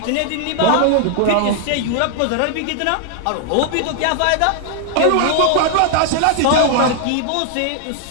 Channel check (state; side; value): different; both; correlation 0.00